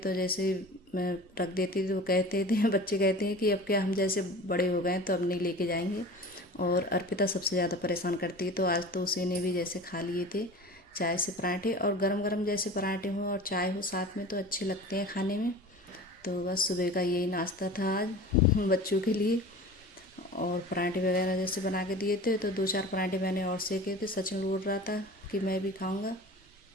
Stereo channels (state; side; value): normal; both; correlation 0.37